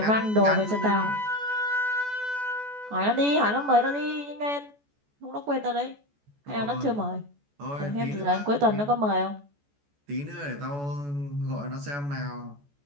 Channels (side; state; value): left; late; 14 ms